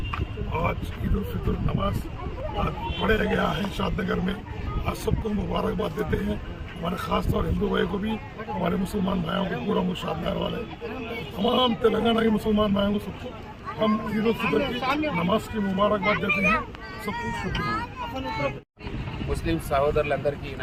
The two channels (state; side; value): identical; both; correlation 1.00